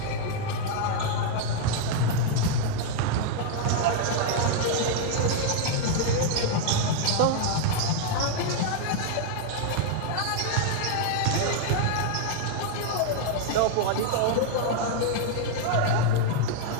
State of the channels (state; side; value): different; both; correlation 0.00